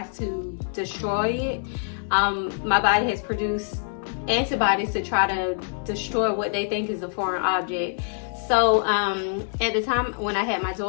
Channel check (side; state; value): right; silent; digital silence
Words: to destroy it. My body has produced antibodies to try to destroy what they think is a foreign object. So at the time when I had my